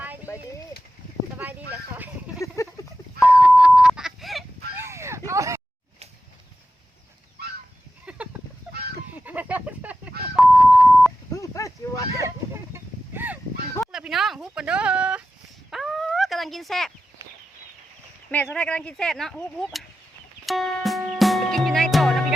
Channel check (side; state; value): both; normal; correlation 0.92